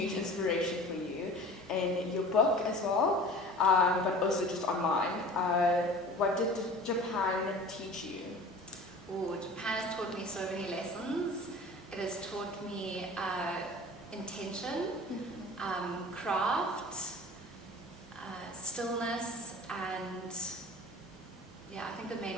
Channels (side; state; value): both; normal; correlation 0.41